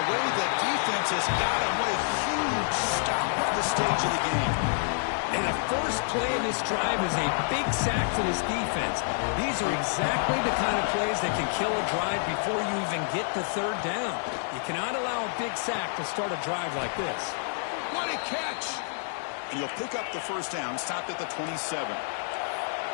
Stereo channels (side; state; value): right; silent; digital silence